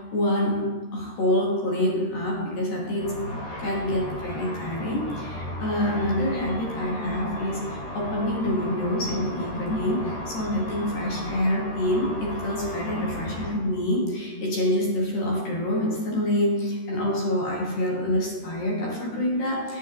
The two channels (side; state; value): right; late; 13 ms